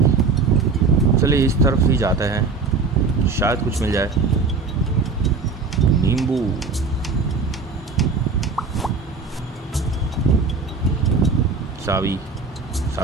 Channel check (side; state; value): left; quieter; 4.4 dB